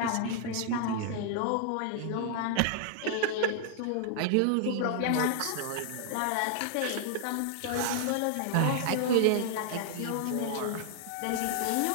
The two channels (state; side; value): different; both; correlation -0.01